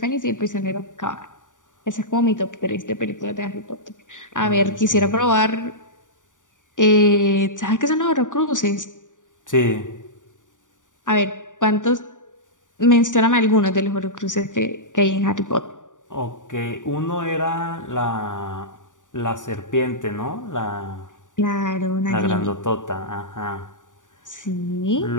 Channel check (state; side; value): late; right; 0.87 ms